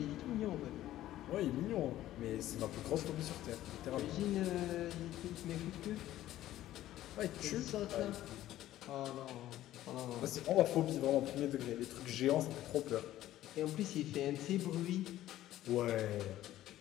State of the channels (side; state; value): right; quieter; 13.9 dB